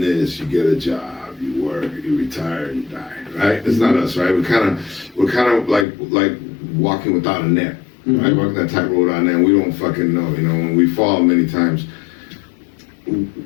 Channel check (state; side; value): drops out; right; at 5.9 s